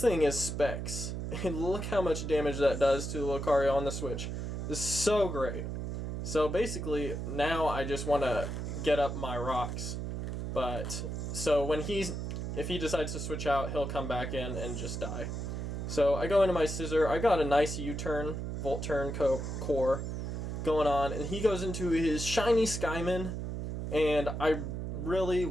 thing is Specs. And look how much damage that does to Lucario on the Switch. This is so great. So basically, now I just want to get up my rocks. But, so when if he decides to switch out, he'll come back in and just die. So I go into my Scissor. I got a nice U-turn, Volt Turn core going on. And he goes into his shiny Skymin. And I really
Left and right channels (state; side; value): noise; right; hum, 4 dB below the sound